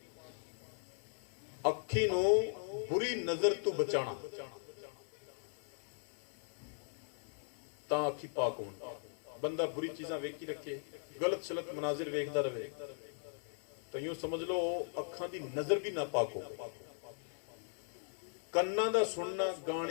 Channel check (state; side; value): silent; right; 52 dB below the other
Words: ਅੱਖੀ ਨੂੰ ਬੁਰੀ ਨਜ਼ਰ ਤੋਂ ਬਚਾਣਾ ਤਾਂ ਅੱਖੀ ਪਾਕ ਹੋਣ। ਬੰਦਾ ਬੁਰੀ ਚੀਜ਼ਾਂ ਵੇਖੀ ਰੱਖੇ, ਗਲਤ ਸ਼ਲਤ ਮਨਾਜ਼ਰ ਵੇਖਦਾ ਰਵੇ ਤਾਂ ਯੂੰ ਸਮਝ ਲਓ ਅੱਖਾਂ ਦੀ ਨਜ਼ਰ ਵੀ ਨਾ ਪਾਕ ਹੋ। ਕੰਨਾਂ ਦਾ ਸੁਣਨਾ,